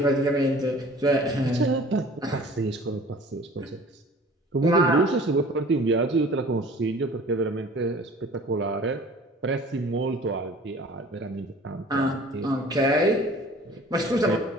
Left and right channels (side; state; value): both; normal; correlation 0.47